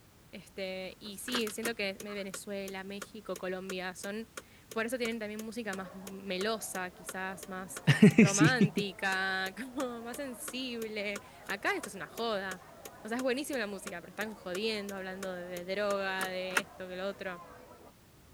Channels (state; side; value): identical; both; correlation 1.00